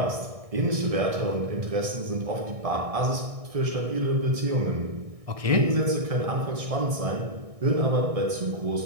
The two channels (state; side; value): late; left; 1.6 ms